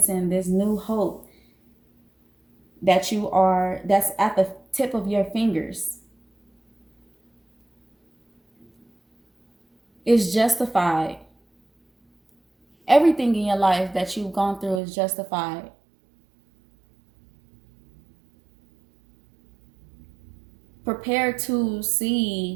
this new hope that's at the tip of your fingers, is justified. Everything in your life that you've gone through is justified. Prepare to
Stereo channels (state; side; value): drops out; left; at 14.8 s